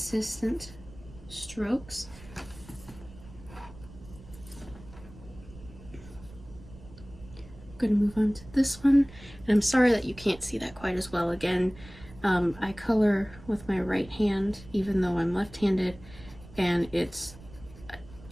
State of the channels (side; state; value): right; noise; rumble, 19 dB below the sound